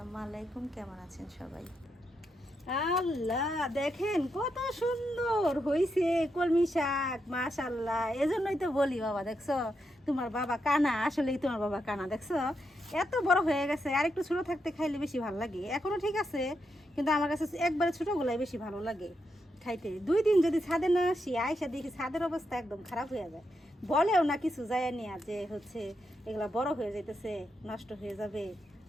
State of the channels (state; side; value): normal; both; correlation 0.83